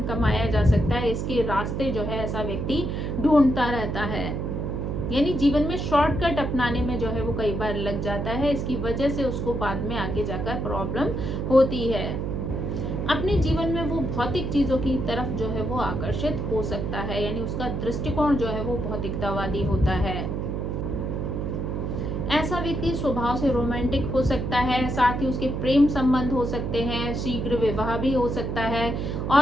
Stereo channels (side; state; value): right; noise; hum, 2 dB below the sound